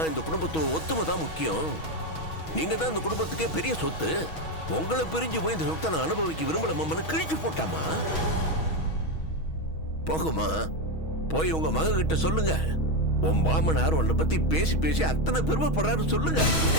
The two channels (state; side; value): late; right; 6.3 ms